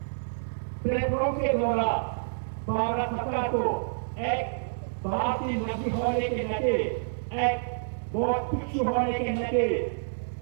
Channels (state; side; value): silent; left; digital silence